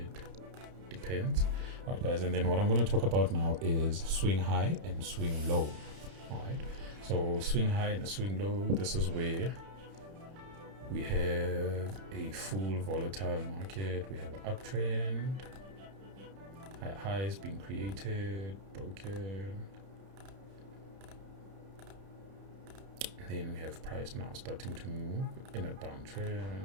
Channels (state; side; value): late; left; 31 ms